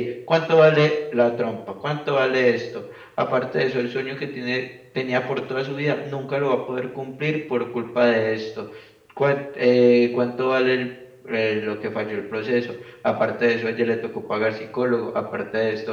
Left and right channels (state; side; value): identical; both; correlation 1.00